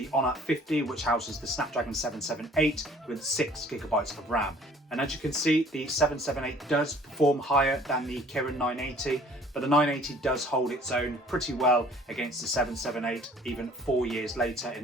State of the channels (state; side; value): normal; both; correlation 0.54